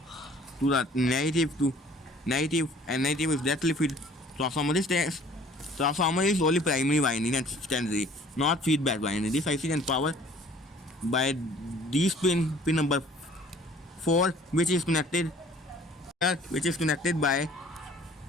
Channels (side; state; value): both; normal; correlation 0.53